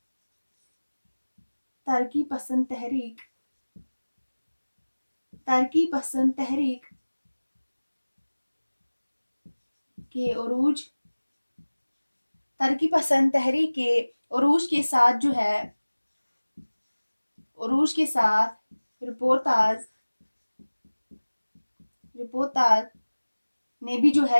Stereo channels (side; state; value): both; inverted; correlation -1.00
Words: तरक्की पसंद तहरीक के उरूज के साथ जो है रिपोर्टाज ने भी जो